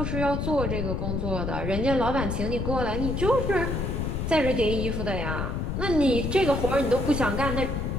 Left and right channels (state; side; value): noise; left; rumble, 2 dB below the sound